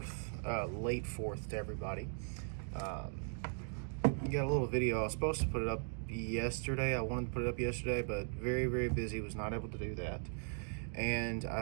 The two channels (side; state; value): left; silent; 52 dB below the other